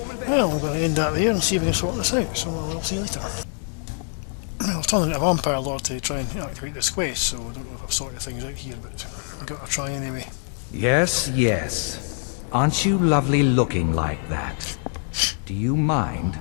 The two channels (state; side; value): silent; right; 55 dB below the other